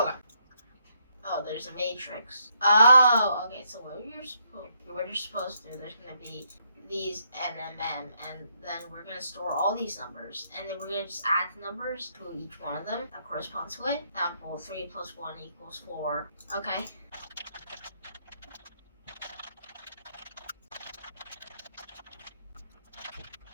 Oh, there's a matrix. Oh, okay, so what you're supposed to do, there's going to be these NMM, and then we're going to store all these numbers, and then we're going to just add the numbers to each one of them that corresponds to it. Example, 3 plus 1 equals 4. Okay.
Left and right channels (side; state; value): both; inverted; correlation -0.74